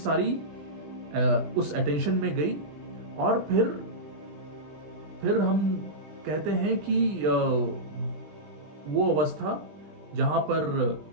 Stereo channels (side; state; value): left; late; 20 ms